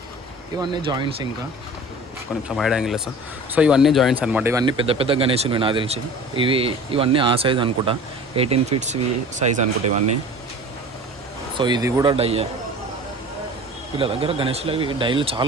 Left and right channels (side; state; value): both; normal; correlation 0.41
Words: ఇవన్నీ జాయింట్స్, ఇంకా కొంచెం వైడ్ యాంగిల్ సార్. సో ఇవన్నీ జాయింట్స్ అనమాట. ఇవన్నీ పెద్ద పెద్ద గణేషులు నాకు తెలిసి. ఇవన్నీ ఆ సైజ్ అనుకుంటా, 18 feet సైజ్ అనుకుంటా ఇవన్నీ. సో ఇది కూడా డయ్యే. వీళ్ళ దగ్గర గణేష్లు అవి డైలు